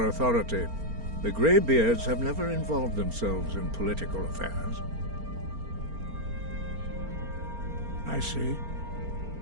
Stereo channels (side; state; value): left; late; 4.4 ms